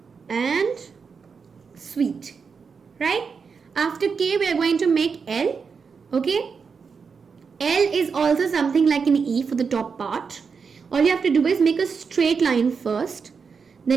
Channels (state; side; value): quieter; left; 5.6 dB